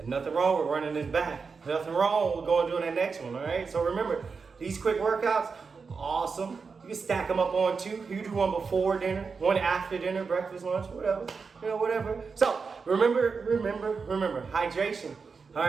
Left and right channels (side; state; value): left; quieter; 5.1 dB